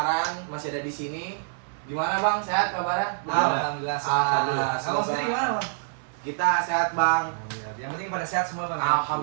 masih ada di sini. Gimana Bang? Sehat kabarnya? Alhamdulillah sehat. Alhamdulillah. Abang sendiri gimana, Bang? Kita sehat Bang. Alhamdulillah. Yang penting pada sehat semua, Bang.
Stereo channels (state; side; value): silent; left; digital silence